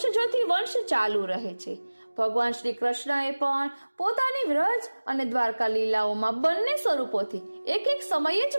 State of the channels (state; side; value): inverted; both; correlation -1.00